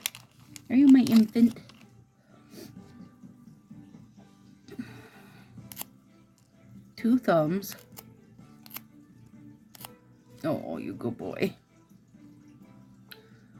you my infant? Two thumbs. Oh, you good boy.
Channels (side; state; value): both; identical; correlation 1.00